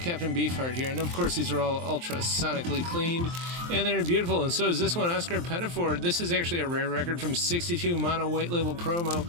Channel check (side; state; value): left; late; 23 ms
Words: Beefheart here, and of course these are all ultra-sonically cleaned, and they're beautiful, and so is this one, Oscar Pettiford. This is actually a rare record from 62, mono white label promo,